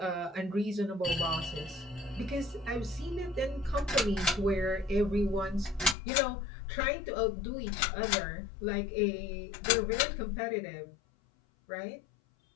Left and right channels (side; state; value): right; drops out; at 6.0 s